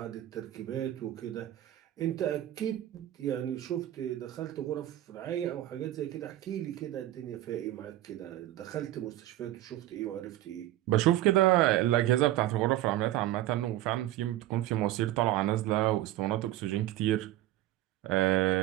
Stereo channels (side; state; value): left; quieter; 14.4 dB